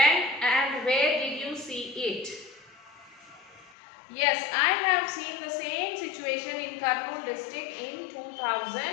and where did you see it? Yes, I have seen the same situation in Kurnool district in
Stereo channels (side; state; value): right; drops out; at 3.8 s